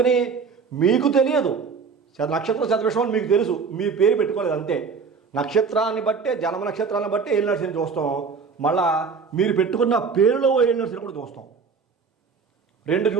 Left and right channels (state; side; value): quieter; left; 5.4 dB